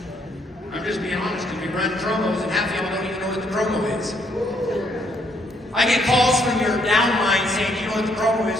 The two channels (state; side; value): normal; both; correlation 0.70